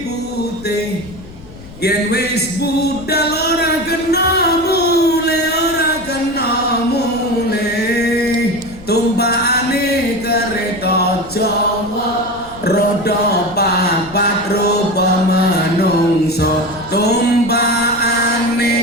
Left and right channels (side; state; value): left; noise; rumble, 19 dB below the sound